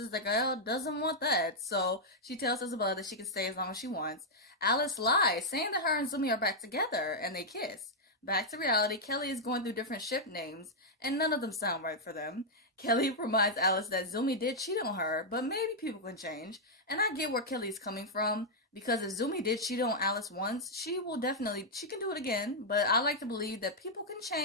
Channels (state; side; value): normal; both; correlation -0.05